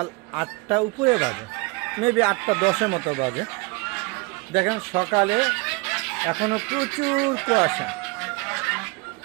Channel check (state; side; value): quieter; left; 26.5 dB